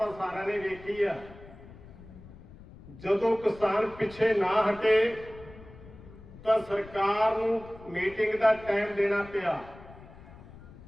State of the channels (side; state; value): left; noise; rumble, 19 dB below the sound